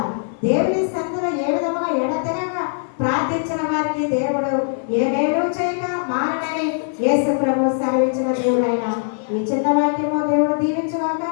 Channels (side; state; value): right; silent; 57 dB below the other